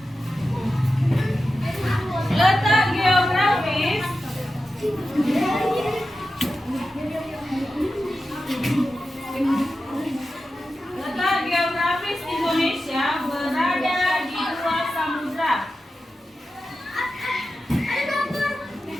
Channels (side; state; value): both; normal; correlation 0.91